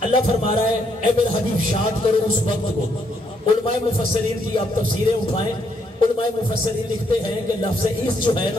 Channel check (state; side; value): normal; both; correlation 0.73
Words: اللہ فرما رہا ہے اے میرے حبیب شاد کرو اس وقت کو. علماء مفسرین کی آپ تفسیریں اٹھائیں. علماء مفسرین لکھتے ہیں کہ لفظ عیس جو ہے